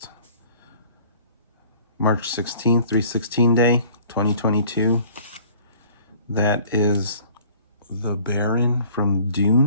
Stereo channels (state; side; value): inverted; both; correlation -0.52